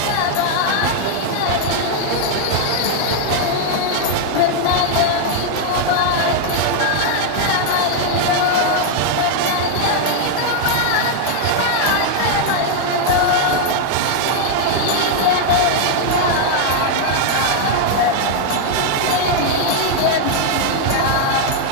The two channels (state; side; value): different; both; correlation 0.00